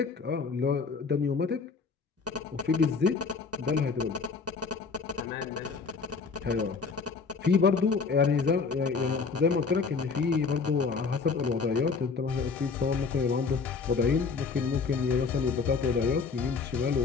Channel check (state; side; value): quieter; right; 5.0 dB